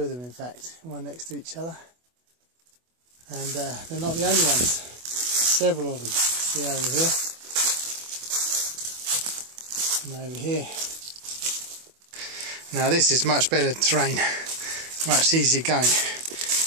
them in fact, one next to each other, and they're not the only ones, several of them. See over here and over here. Now this is much better terrain, much easier going.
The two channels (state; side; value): late; left; 24 ms